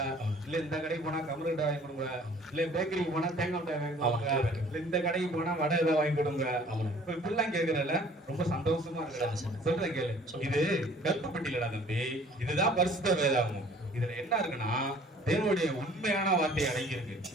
இல்ல இந்த கடைக்கு போனா கமரு மிட்டாய் வாங்கி கொடுங்க, இல்ல பேக்கரிக்கு போனா தேங்காய் மிட்டாய் வாங்கி கொடுங்க, இல்ல இந்த கடைக்கு போனா வடை ஏதாவது வாங்கி கொடுங்க. இப்ப இப்படிலாம் கேக்குறல ரொம்ப சந்தோஷமா இருக்கு. சொல்றேன் கேளு. இது கருப்பு பெட்டியிலடா தம்பி. இதுதான் பரிசுத்த வேதாகமம். இதுல என்ன இருக்குன்னா தேவனுடைய உண்மையான வார்த்தை அடங்கி இருக்கு.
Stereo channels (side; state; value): both; normal; correlation 0.53